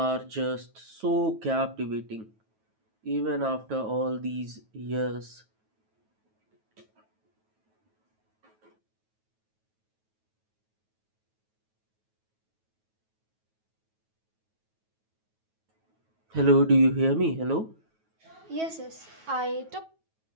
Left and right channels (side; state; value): left; late; 9.2 ms